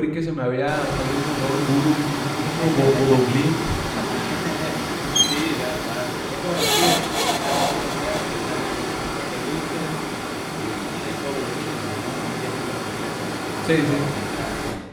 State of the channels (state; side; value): identical; both; correlation 1.00